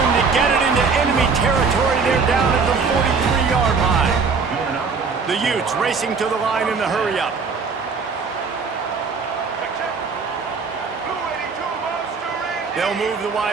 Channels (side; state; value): left; quieter; 5.0 dB